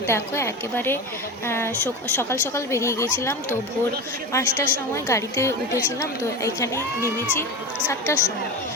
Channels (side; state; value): both; normal; correlation 0.25